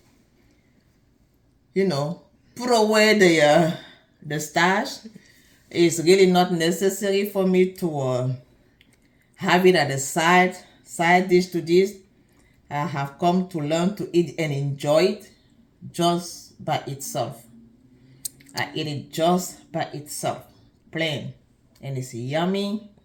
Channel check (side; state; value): both; identical; correlation 1.00